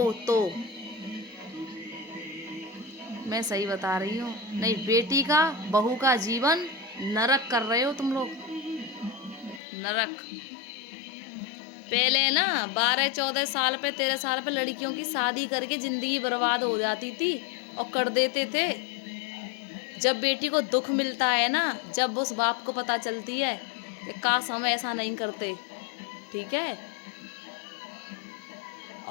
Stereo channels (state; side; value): drops out; right; at 9.6 s